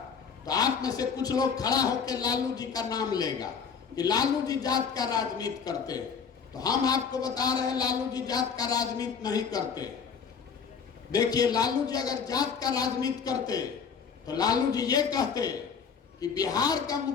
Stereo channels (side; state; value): right; quieter; 6.3 dB